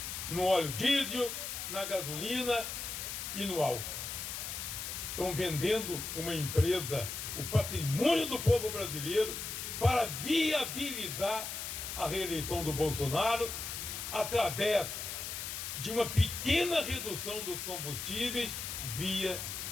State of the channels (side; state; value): left; noise; hiss, 5 dB below the sound